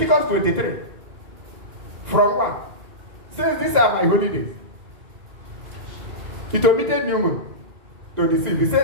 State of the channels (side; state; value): left; late; 2.0 ms